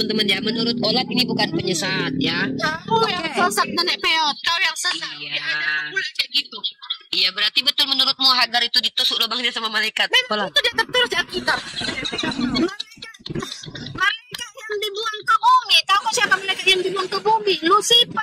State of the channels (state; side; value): identical; both; correlation 1.00